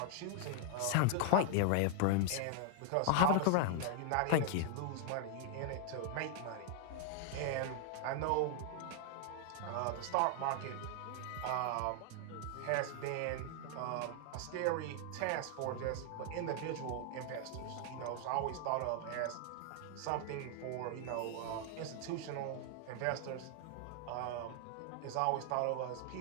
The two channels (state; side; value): different; both; correlation 0.00